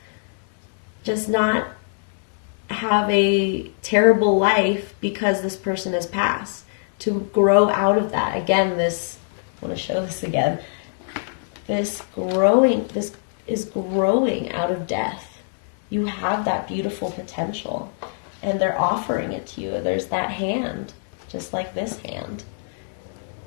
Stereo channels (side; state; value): right; silent; 59 dB below the other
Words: just not have a terrible life because this person has passed. To grow out of that. Again, I want to show this again. This is growing out of death. You have that beautiful potential, and they're offering it to you. There's that hand, just like this hand.